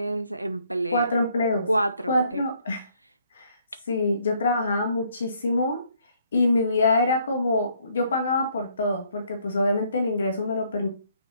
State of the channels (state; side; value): inverted; both; correlation -0.67